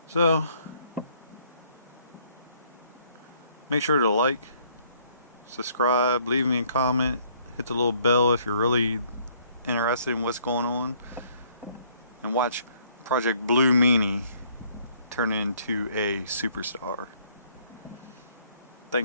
So, make sure to like, subscribe, leave me a comment, hit the little bell if you're really interested in what's going on, and watch Project Blue Meanie turn into a superstar.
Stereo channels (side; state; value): both; inverted; correlation -0.63